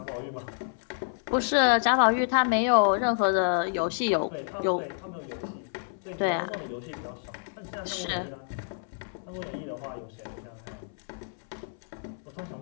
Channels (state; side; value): silent; right; 59 dB below the other